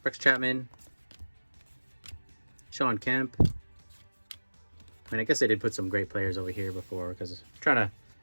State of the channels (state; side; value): inverted; both; correlation -1.00